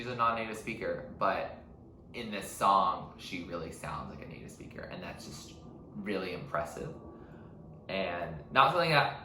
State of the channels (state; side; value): identical; both; correlation 1.00